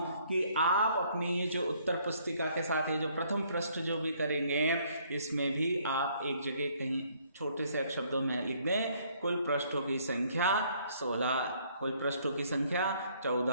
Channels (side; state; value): both; inverted; correlation -0.64